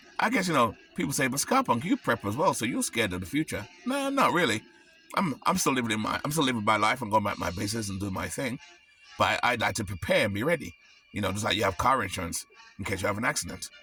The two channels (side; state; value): both; identical; correlation 1.00